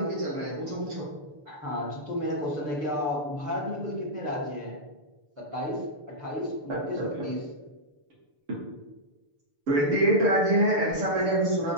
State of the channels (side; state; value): left; late; 6.8 ms